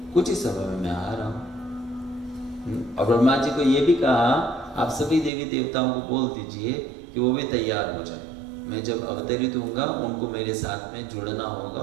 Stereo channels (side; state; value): left; drops out; at 5.3 s